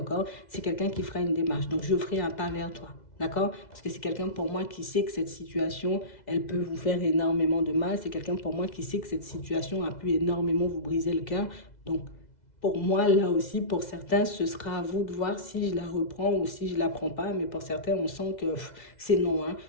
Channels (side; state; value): right; late; 2.0 ms